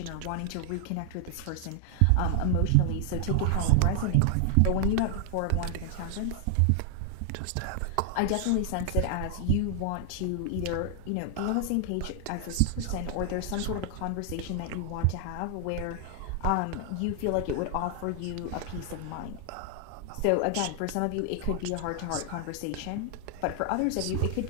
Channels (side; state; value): both; different; correlation 0.00